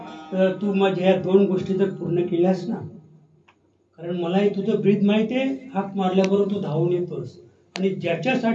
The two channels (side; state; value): both; identical; correlation 1.00